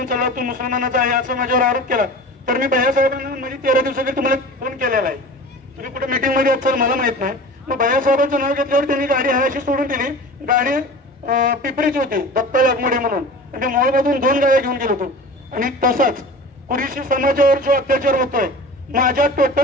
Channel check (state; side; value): normal; both; correlation 0.37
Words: चालला, तू मुसलमानाचा आहे असं माझ्यावर आरोप केला। तर मी भैयासाहेबांना म्हणजे 13 दिवसाखाली तुम्हाला फोन केलेला आहे, तुम्ही कुठे मीटिंग मध्ये असाल मला माहित नाही। मग भैयासाहेबांचं नाव घेतल्यावर त्यांनी गाडी हायशी सोडून दिली। गाडी पिपरीची होती, दत्ता लागमोडे म्हणून, आणि मोळमधून 2 गाड्या घेऊन गेलो होतो। आणि तसाच कुरुशी समाजावर जो अत्याचार होतोय, माझ्या